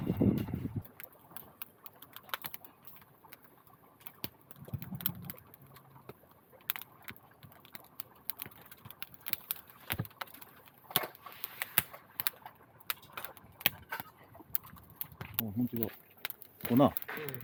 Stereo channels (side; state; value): both; identical; correlation 1.00